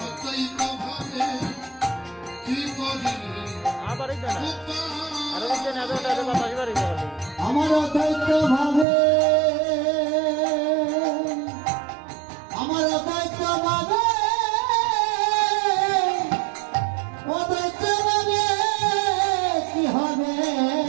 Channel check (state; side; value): drops out; left; at 8.8 s